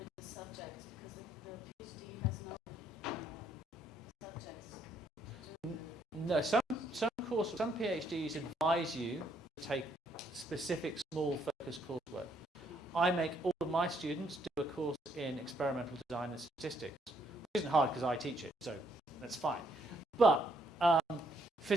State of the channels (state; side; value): normal; both; correlation 0.70